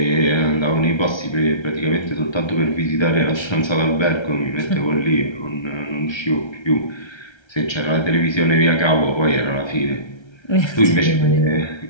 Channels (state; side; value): late; right; 1.3 ms